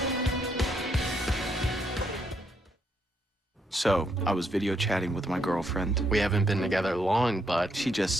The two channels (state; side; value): normal; both; correlation 0.75